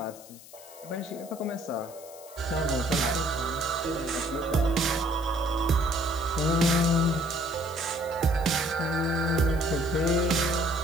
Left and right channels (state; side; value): noise; left; hiss, 19 dB below the sound